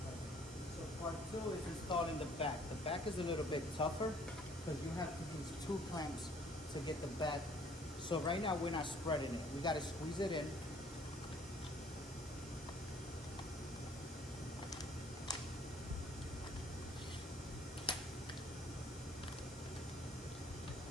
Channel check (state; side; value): normal; both; correlation 0.58